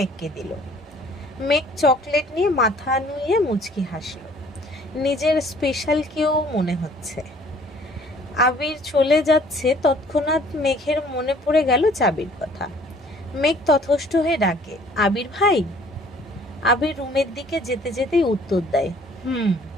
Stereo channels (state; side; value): normal; both; correlation 0.56